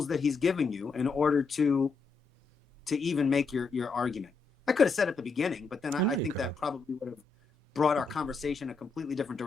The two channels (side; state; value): right; quieter; 4.5 dB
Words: that he's given you in order to even make your argument. I could have said at the beginning, but then I think that probably would have brought our conversation a completely different